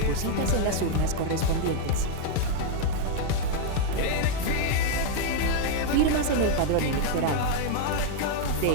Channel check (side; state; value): both; different; correlation 0.00